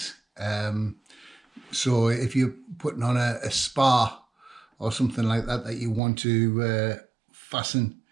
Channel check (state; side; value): drops out; left; at 6.0 s